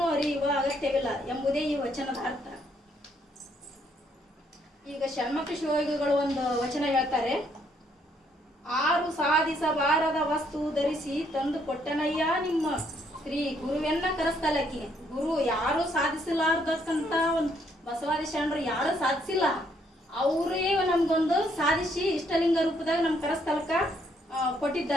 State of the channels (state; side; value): normal; both; correlation 0.70